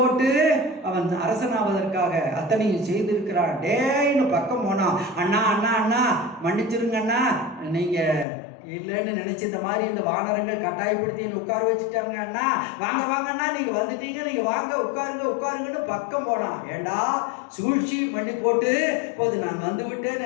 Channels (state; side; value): drops out; right; at 8.2 s